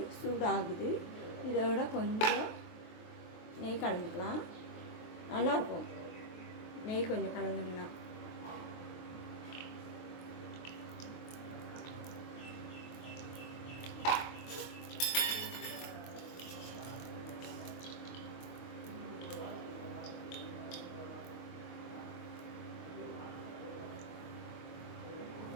சூடாகுது. இதோட கொஞ்சம் நெய் கலந்துக்கலாம், நல்லாயிருக்கும். நெய் கொஞ்சம் கலந்துங்கன்னா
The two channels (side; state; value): right; late; 23 ms